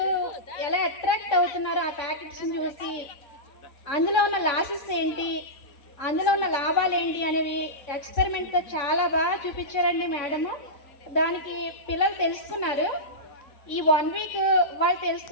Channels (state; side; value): late; right; 3.5 ms